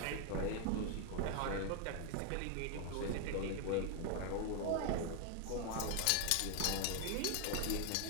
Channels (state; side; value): different; both; correlation 0.00